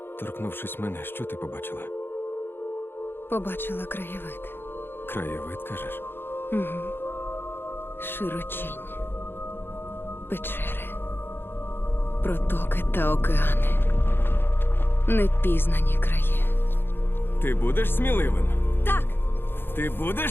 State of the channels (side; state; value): right; late; 0.10 ms